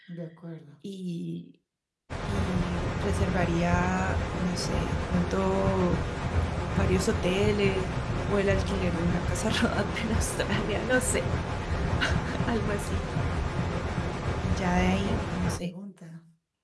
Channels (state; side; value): identical; both; correlation 1.00